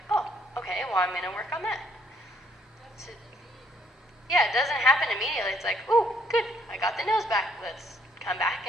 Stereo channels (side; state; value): both; normal; correlation 0.67